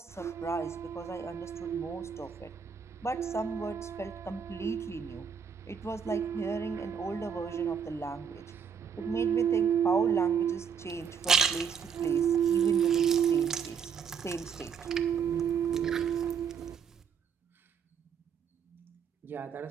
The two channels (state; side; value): quieter; left; 6.9 dB